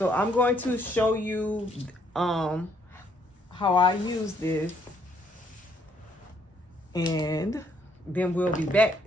I'm going to show you how I use this, and then we'll be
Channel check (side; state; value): both; normal; correlation 0.69